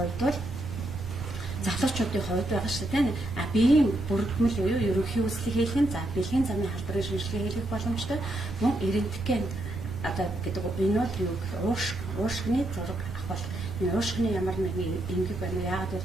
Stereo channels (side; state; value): right; noise; rumble, 10 dB below the sound